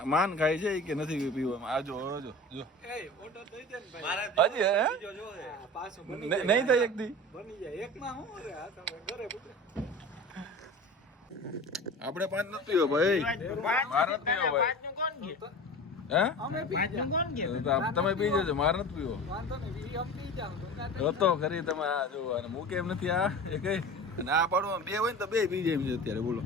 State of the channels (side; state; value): both; normal; correlation 0.34